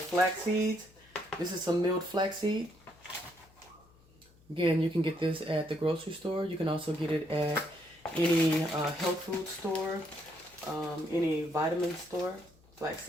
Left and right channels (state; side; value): noise; left; hum, 28 dB below the sound